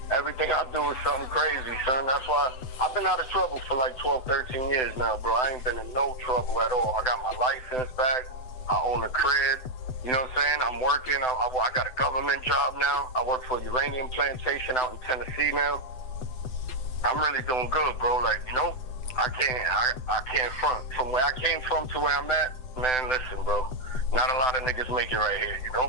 Everything I do is something crazy, son. That's why I've been out of trouble for like 12, 13 years now, bro. I ain't been in no trouble at all. I got my license back. I own a crib. You know what I'm saying? I'm working. I got a government job now. I work for a uranium plantation out in Tennessee now. I'm really doing good, bro. Like, you know, I can't front. From where I came from to where I'm at, man, listen, bro. Not a lot of niggas make it right here, you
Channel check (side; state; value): right; late; 7.8 ms